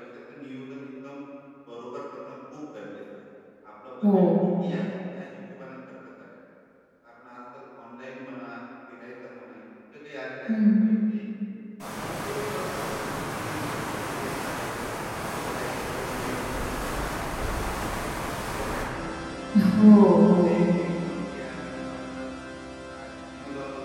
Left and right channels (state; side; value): identical; both; correlation 1.00